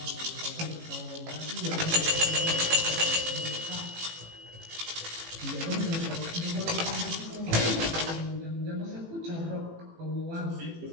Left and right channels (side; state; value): left; late; 18 ms